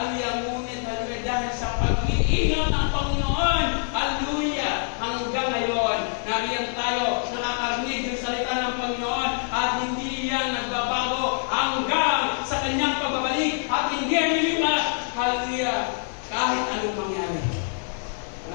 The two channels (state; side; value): silent; right; 60 dB below the other